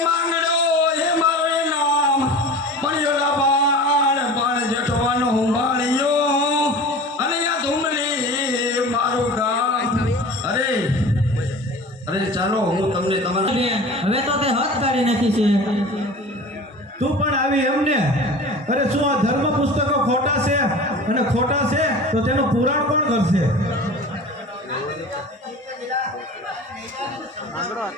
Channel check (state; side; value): normal; both; correlation 0.37